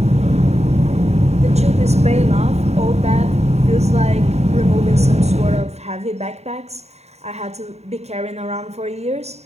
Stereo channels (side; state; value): left; late; 0.31 ms